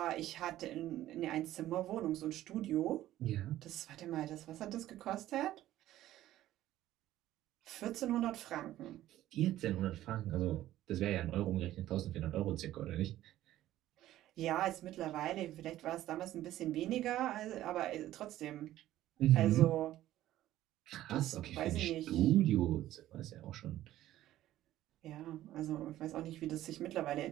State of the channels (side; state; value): left; quieter; 14.0 dB